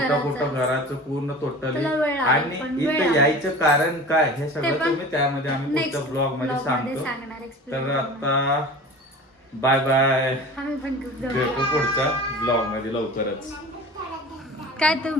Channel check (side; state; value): both; normal; correlation 0.37